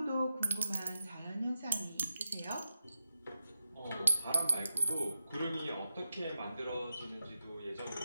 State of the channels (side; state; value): both; inverted; correlation -0.90